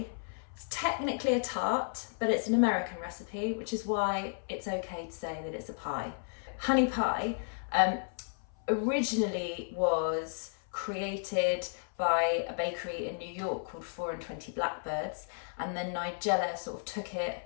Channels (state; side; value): silent; right; 55 dB below the other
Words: It's technically a tart, but it's an American recipe, which is why it's okay to say that it's a pie. Honey pie originally was created by a bakery in New York called 4 and 20 Blackbirds, and then Nigella sort of took it